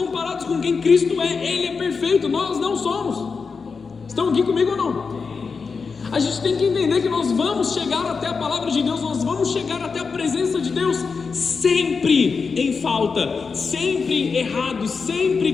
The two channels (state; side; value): quieter; right; 5.0 dB